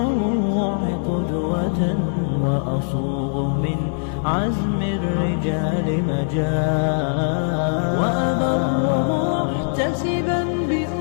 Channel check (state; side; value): silent; right; digital silence